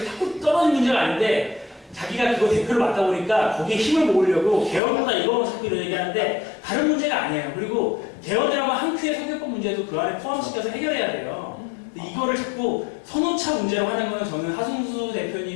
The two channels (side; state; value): right; drops out; at 4.8 s